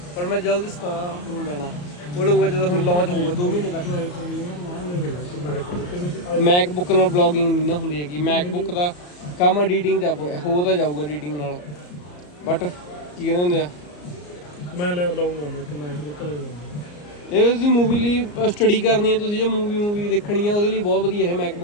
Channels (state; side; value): late; right; 34 ms